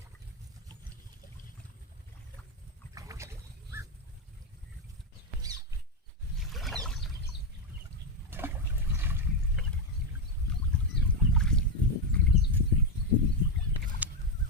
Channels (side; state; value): both; normal; correlation 0.07